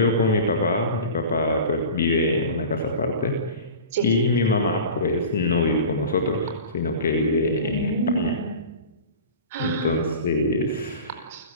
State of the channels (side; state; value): both; inverted; correlation -0.36